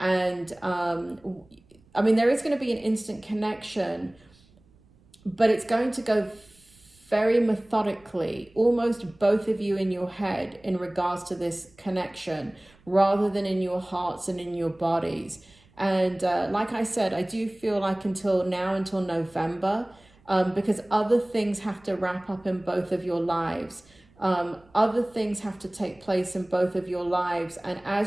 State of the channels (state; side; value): noise; right; rumble, 30 dB below the sound